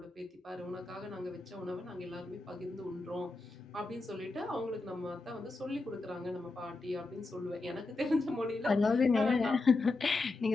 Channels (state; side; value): quieter; right; 3.4 dB